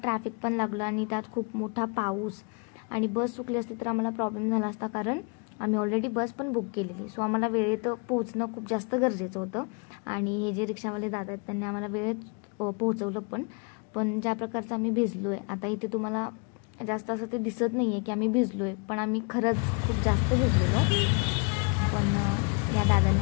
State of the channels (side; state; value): right; quieter; 34.7 dB